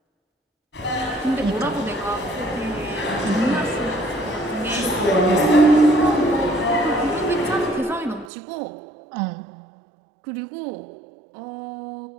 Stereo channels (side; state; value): left; drops out; at 8.3 s